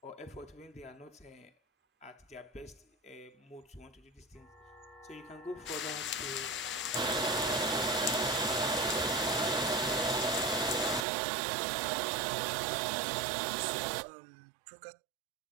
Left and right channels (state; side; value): drops out; left; at 11.1 s